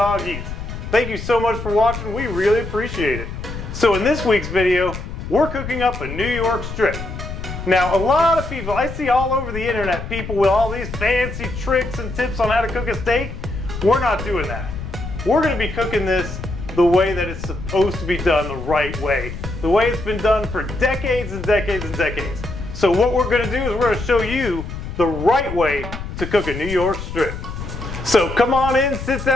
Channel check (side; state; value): left; noise; rumble, 8 dB below the sound